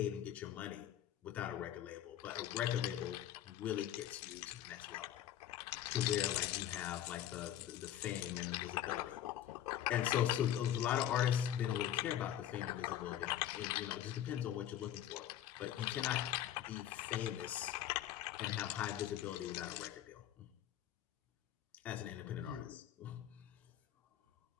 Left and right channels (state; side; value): quieter; right; 11.5 dB